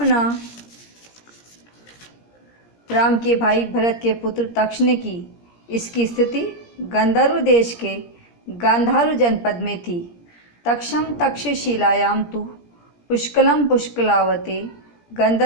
राम के भाई भरत के पुत्र तक्ष ने की। इसकी स्थिति गंधर्व देश के गांधार जनपद में थी। तक्षम तक्षशिलायां तु पुष्कलम पुष्कलावते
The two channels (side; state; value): right; late; 17 ms